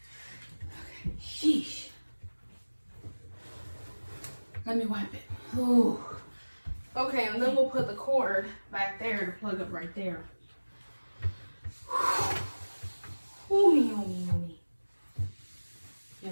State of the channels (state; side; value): inverted; both; correlation -1.00